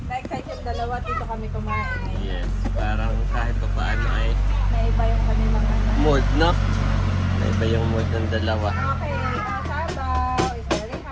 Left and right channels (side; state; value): both; identical; correlation 1.00